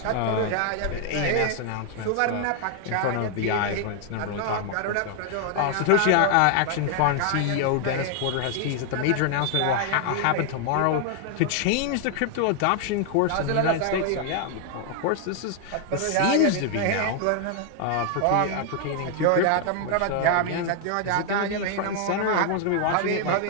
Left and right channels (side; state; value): both; different; correlation 0.00